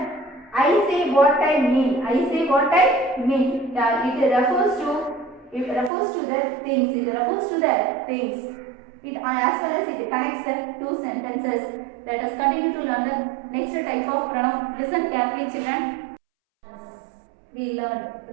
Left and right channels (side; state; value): left; drops out; at 5.9 s